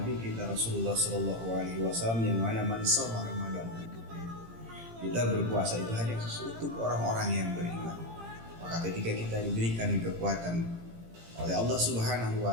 kita Rasulullah Sallallahu Alaihi Wasallam, yang mana man shoma Ramadan, kita berpuasa itu hanya untuk orang-orang yang beriman. Maka ketika kita diberikan kekuatan oleh Allah Subhanahu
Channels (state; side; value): late; left; 18 ms